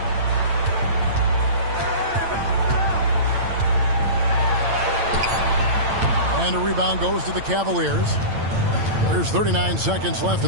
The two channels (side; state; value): left; late; 8.9 ms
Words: And a rebound goes to the Cavaliers. There's 39 seconds left